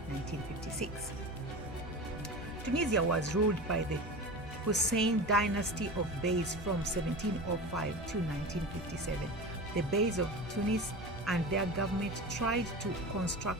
1956. Tunisia was ruled by the Hussein dynasty of Beys from 1705 to 1957. The Beys of Tunis and their government tried to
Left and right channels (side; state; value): both; normal; correlation 0.30